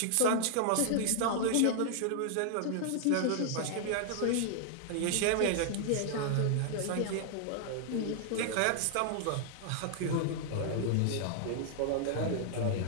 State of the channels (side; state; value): both; different; correlation -0.01